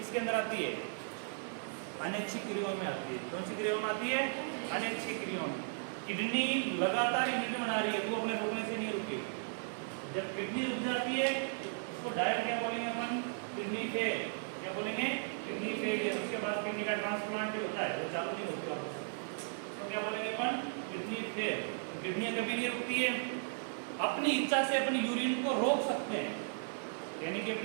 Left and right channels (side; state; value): left; silent; digital silence